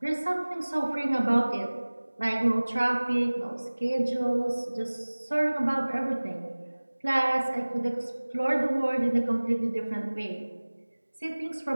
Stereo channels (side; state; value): both; inverted; correlation -1.00